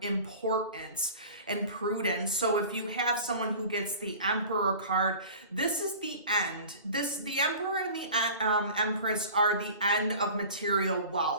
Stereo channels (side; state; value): both; inverted; correlation -0.40